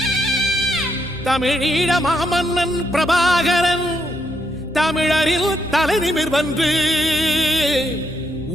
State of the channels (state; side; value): noise; left; hum, 15 dB below the sound